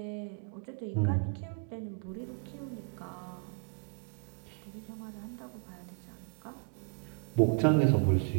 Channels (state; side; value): quieter; left; 39.8 dB